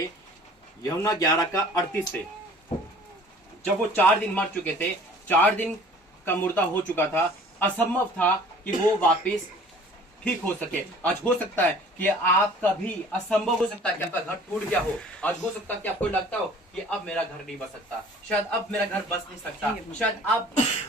यूहन्ना 11 का 38 से, जब वो 4 दिन मर चुके थे, 4 दिन का मुर्दा हो चुका था, असंभव था कि वो वापस ठीक हो सके। आज हो सकता है कि आपका भी असंभव हो सकता है कि आपका घर टूट गया हो। आज हो सकता है कि आपको लगता हो कि अब मेरा घर नहीं बस सकता, शायद अब मेरा घर बस नहीं सकता, शायद अब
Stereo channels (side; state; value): both; normal; correlation 0.49